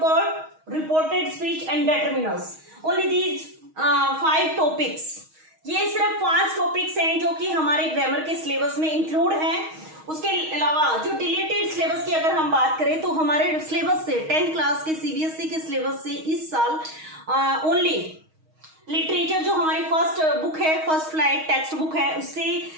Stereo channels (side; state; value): left; late; 6.4 ms